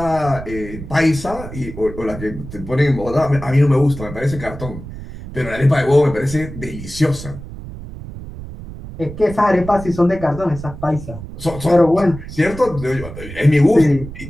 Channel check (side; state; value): right; noise; rumble, 12 dB below the sound